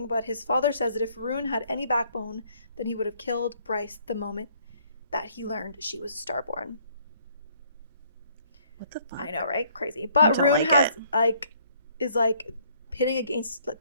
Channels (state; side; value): inverted; both; correlation -0.63